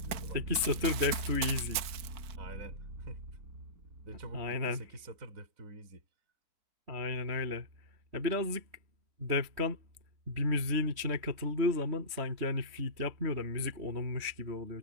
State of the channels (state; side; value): late; left; 3.1 ms